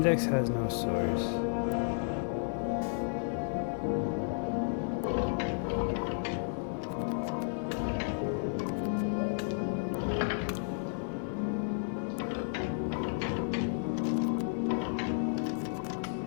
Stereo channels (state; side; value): silent; right; digital silence